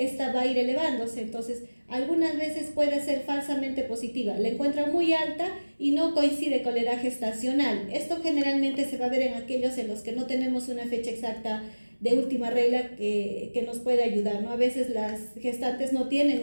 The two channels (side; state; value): both; inverted; correlation -1.00